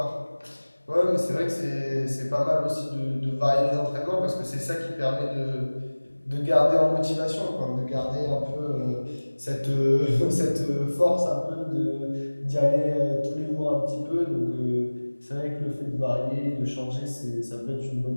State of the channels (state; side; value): inverted; both; correlation -1.00